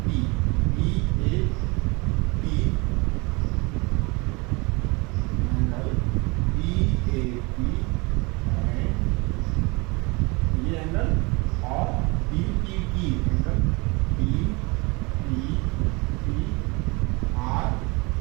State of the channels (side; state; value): left; quieter; 26.9 dB